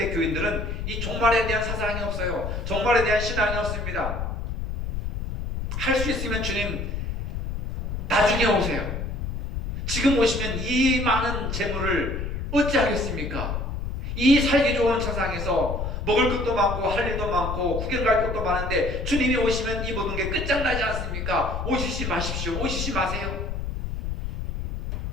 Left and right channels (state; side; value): noise; left; rumble, 3 dB below the sound